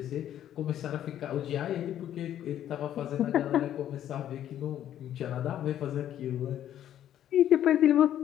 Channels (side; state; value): right; quieter; 11.2 dB